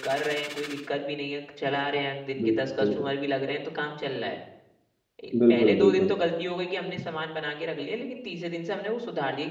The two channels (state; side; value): identical; both; correlation 1.00